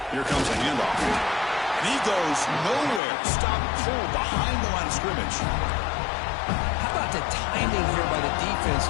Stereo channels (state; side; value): drops out; right; at 3.0 s